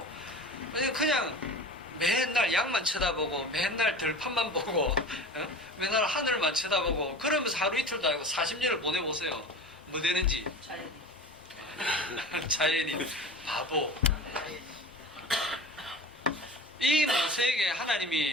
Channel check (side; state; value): both; normal; correlation 0.35